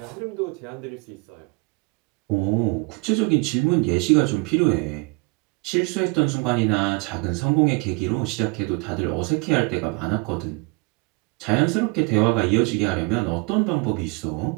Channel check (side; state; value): left; quieter; 29.1 dB